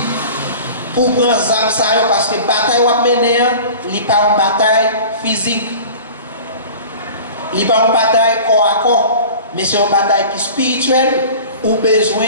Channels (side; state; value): both; inverted; correlation -0.40